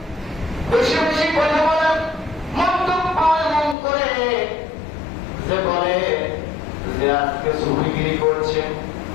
বেশি বেশি কথা বলেন, মন্তব্য এমন করে যে বলে যে আজকে সুফিগিরি করছে,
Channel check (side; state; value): right; drops out; at 3.8 s